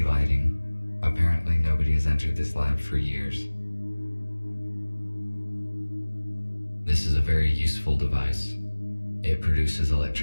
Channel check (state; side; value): inverted; both; correlation -1.00